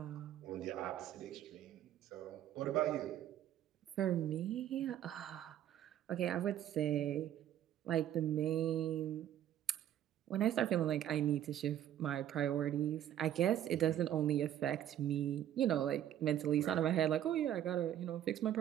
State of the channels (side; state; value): left; quieter; 11.2 dB